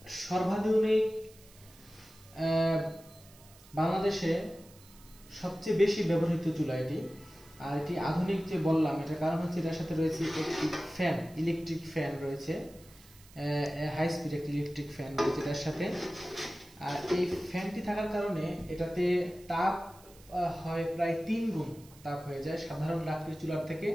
সর্বাধুনিক বাংলাদেশে সবচেয়ে বেশি ব্যবহৃত চুলা এটি। আর এটি আধুনিক যে বললাম এটার কারণ হচ্ছে এটার সাথে রয়েছে একটি ফ্যান, ইলেকট্রিক ফ্যান রয়েছে, হাই স্পিড একটি ইলেকট্রিক ফ্যান রয়েছে এটার সাথে। আর এই ফ্যানটি থাকার কারণে এটাতে তাপ হয় প্রায় 3 গুণ তাপ হয়ে যায় সাধারণ লাকড়ির চুলার থেকে,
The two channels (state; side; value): noise; right; hiss, 24 dB below the sound